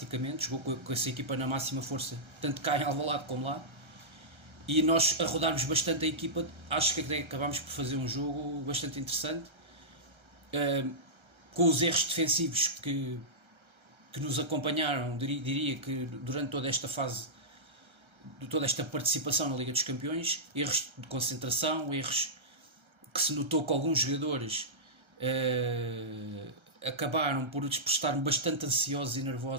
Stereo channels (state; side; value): late; left; 1.3 ms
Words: jogou com essa equipa na máxima força, tanto cá em Alvalade como lá, e nós a rodarmos bastante a equipa. Acho que acabámos por fazer um jogo bastante interessante, com os erros defensivos que nos acompanharam, diria que durante toda esta fase, toda esta participação na Liga dos Campeões, erros de concentração, erros que se notou que alguns jogadores acabaram por estar bastante ansiosos e